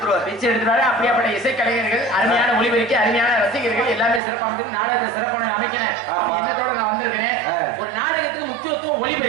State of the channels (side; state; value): left; drops out; at 4.2 s